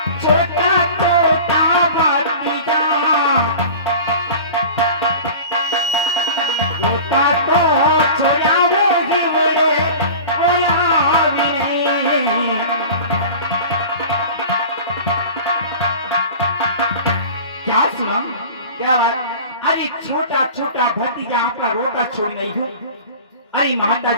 छोटा छोटा भक्ति जम्मा छोटा तो छोड़ा होगी बड़े क्या सुना? क्या बात? अरे छोटा छोटा भतीजा आपका रोटा छोड़ नहीं हो। अरे माता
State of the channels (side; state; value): both; inverted; correlation -0.37